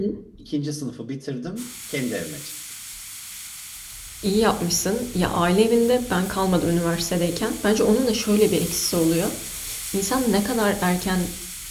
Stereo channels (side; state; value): both; identical; correlation 1.00